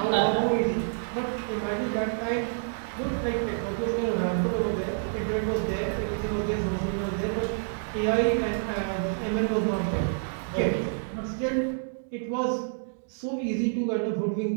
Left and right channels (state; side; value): silent; left; digital silence